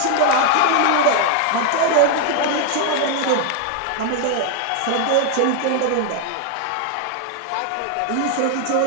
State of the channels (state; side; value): different; both; correlation 0.00